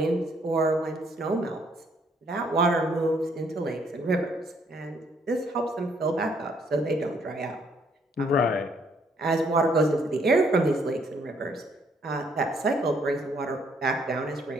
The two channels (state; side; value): normal; both; correlation 0.67